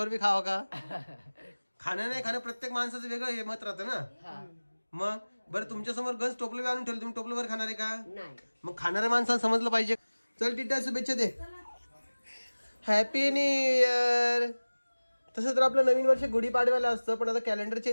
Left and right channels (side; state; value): both; inverted; correlation -1.00